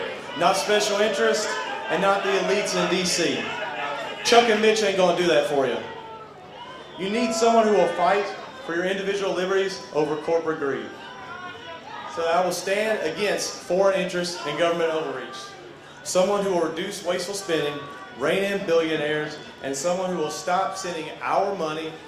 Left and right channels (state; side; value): identical; both; correlation 1.00